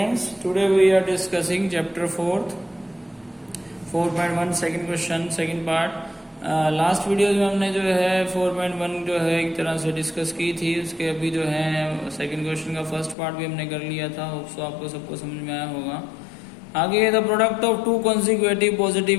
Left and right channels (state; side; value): drops out; right; at 13.2 s